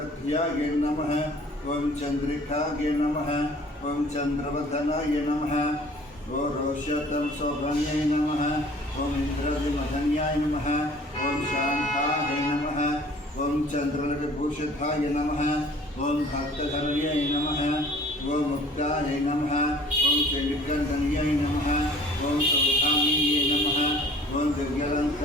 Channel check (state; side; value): normal; both; correlation 0.51